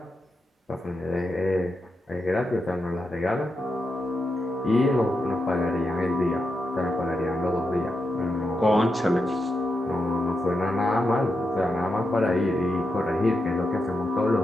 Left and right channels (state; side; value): normal; both; correlation 0.86